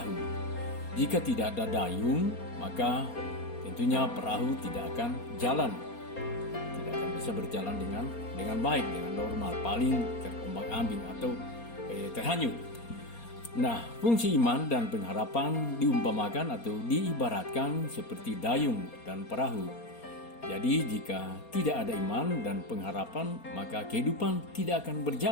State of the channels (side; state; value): right; late; 4.3 ms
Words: Jika tidak ada dayung, maka tentunya perahu tidak akan jalan, tidak akan bisa berjalan dengan baik, dengan normal, paling terombang-ambing atau terhanyut. Nah, fungsi iman dan pengharapan diumpamakan atau diibaratkan seperti dayung dan perahu. Jadi jika tidak ada iman dan pengharapan, maka kehidupan tidak akan